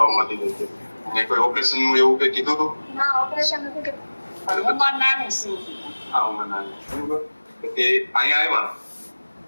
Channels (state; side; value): inverted; both; correlation -1.00